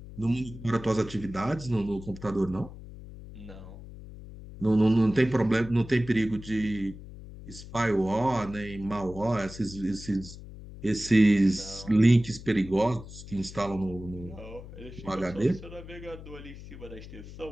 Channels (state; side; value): noise; left; hum, 14 dB below the sound